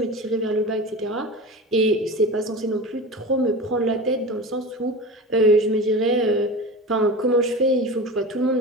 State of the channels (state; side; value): normal; both; correlation 0.30